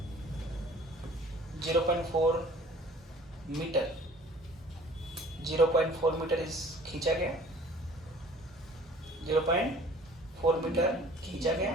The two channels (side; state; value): both; normal; correlation 0.50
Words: 0.4 metre इस खींचा गया। 0.4 मीटर खींचा गया।